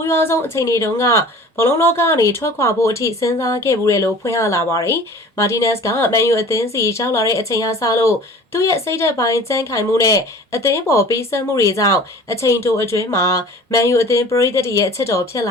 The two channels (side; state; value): both; normal; correlation 0.44